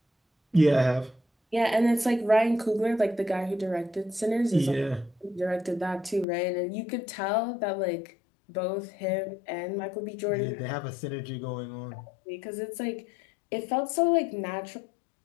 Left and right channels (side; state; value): right; drops out; at 6.2 s